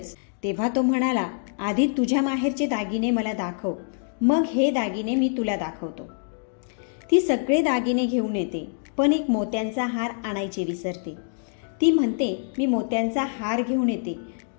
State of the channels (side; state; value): right; silent; digital silence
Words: तेव्हा तो म्हणाला, आधी तुझ्या माहेरचे दागिने मला दाखव, मग हे दागिने मी तुला दाखवतो. ती सगळे दागिने घेऊन येते, पण एक मोत्यांचा हार आणायचे विसरते. ती म्हणते, मी मोत्यांचा हार घेऊन येते,